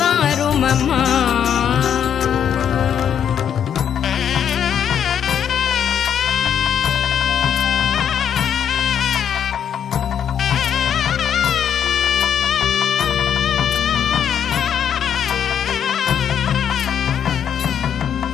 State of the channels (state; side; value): quieter; right; 8.7 dB